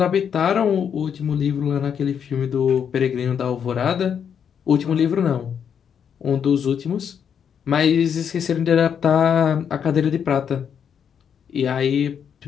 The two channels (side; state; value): right; quieter; 7.8 dB